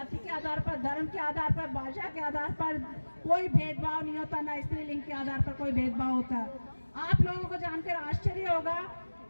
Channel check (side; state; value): both; inverted; correlation -1.00